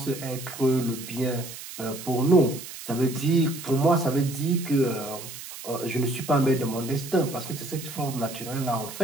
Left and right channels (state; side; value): noise; right; hiss, 12 dB below the sound